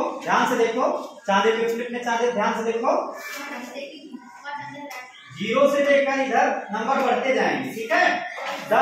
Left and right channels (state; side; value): identical; both; correlation 1.00